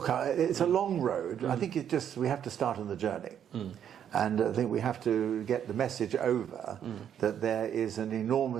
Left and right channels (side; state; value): left; quieter; 9.2 dB